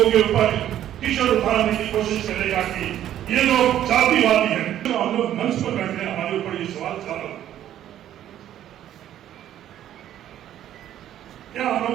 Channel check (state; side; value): quieter; left; 11.6 dB